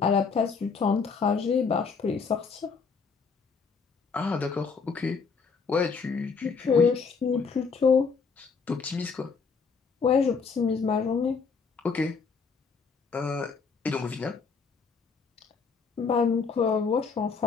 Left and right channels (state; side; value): quieter; right; 5.2 dB